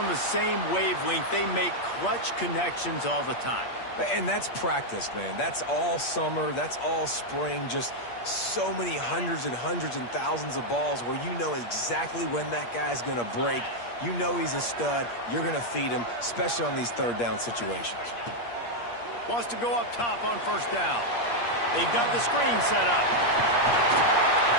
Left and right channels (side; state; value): right; late; 8.5 ms